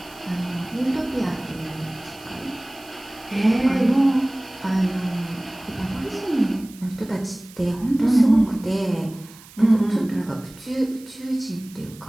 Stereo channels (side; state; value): right; noise; hiss, 21 dB below the sound